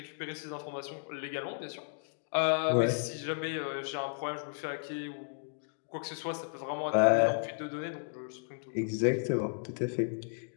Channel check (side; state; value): right; silent; digital silence